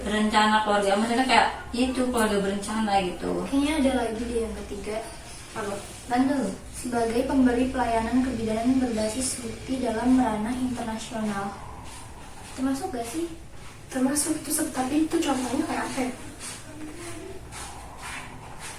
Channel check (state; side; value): identical; both; correlation 1.00